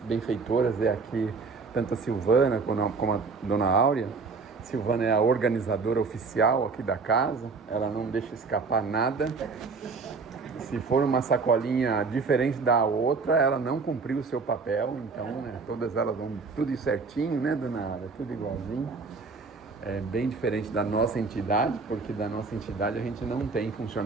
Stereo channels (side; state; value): left; quieter; 4.5 dB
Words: benfeitoras é aqui, tanto a Silvana como a Dona Áurea. Silvana é a organizadora oficial aqui da casa, ela não deixa escapar nada. Se for uma sacolinha diferente da outra, ela não cumpriu o seu papel. Então, né, todas elas vão tudo certinho, né, Dona Áurea? Tudo igualzinho. É bem diferente da nossa entidade, porque da nossa entidade a gente não tem